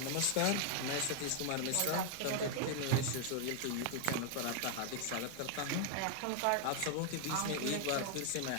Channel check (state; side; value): different; both; correlation 0.00